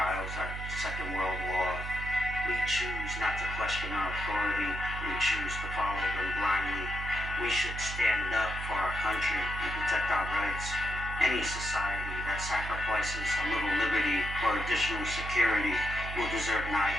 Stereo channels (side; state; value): right; noise; hum, 7 dB below the sound